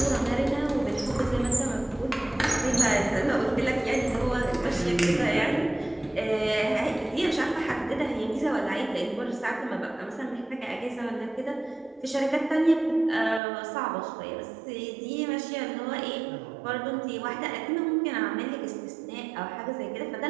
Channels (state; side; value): drops out; left; at 13.4 s